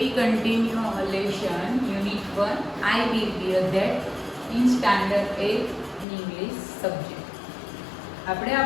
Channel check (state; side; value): drops out; right; at 6.1 s